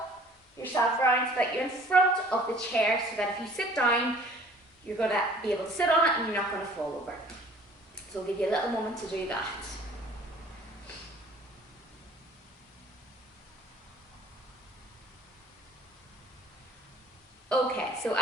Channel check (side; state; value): both; normal; correlation 0.52